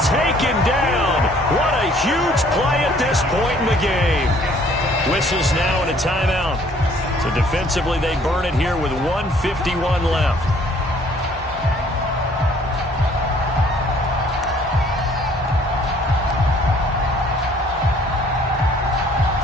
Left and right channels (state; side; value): normal; both; correlation 0.59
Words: taken down. What a huge play at this point in the game. Whistles now and a timeout. So defensively, they burn it here with 1:51 left.